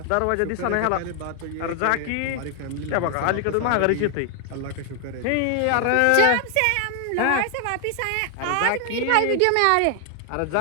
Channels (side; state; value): both; different; correlation 0.00